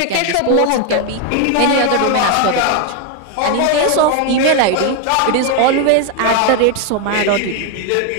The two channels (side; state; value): both; different; correlation 0.01